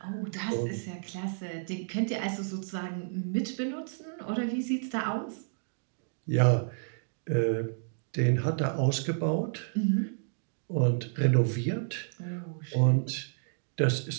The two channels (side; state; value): left; silent; digital silence